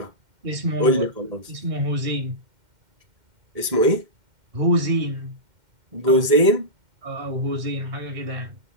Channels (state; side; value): late; left; 2.1 ms